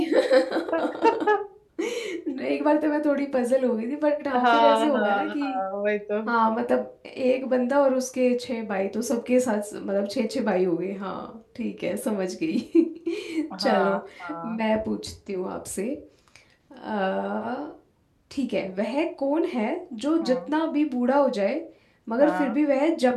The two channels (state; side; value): identical; both; correlation 1.00